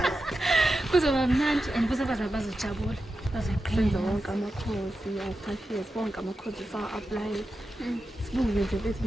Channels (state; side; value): normal; both; correlation 0.90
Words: Kuzoba mnandi and futhi bazojabula. Senza wonke amakhosi ya 5 years wonke amakhosi sa-apply. Sibuke nje bethi